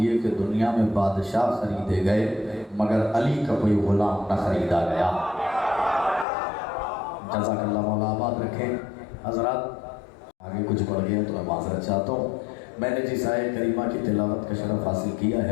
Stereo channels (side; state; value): right; drops out; at 6.2 s